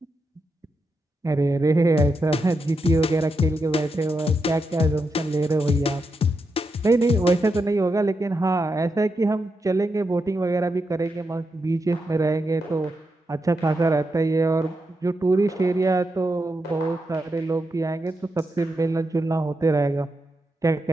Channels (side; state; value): both; normal; correlation 0.85